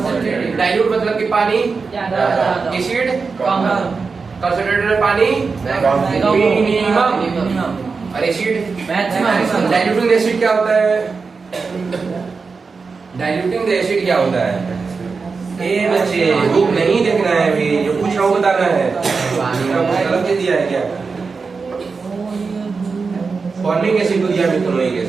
डाइल्यूट मतलब कि पानी, एसिड कंसंट्रेटेड में पानी मिनिमम, और एसिड मैक्सिमम। डाइल्यूटिंग एसिड क्या होता है? डाइल्यूटिंग एसिड क्या होता है? ए बच्चे बुक नहीं देखना है अभी, जो पूछ रहा हूँ बताना है। गलत दिया है क्या? फॉर्मिक एसिड को दिया, मिथेनोइक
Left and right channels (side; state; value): left; quieter; 4.7 dB